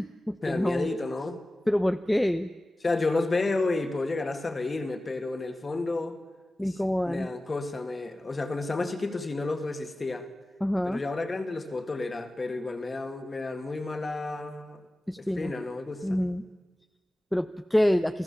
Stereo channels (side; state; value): both; normal; correlation 0.96